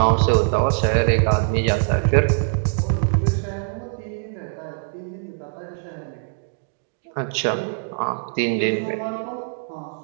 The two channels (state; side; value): silent; left; digital silence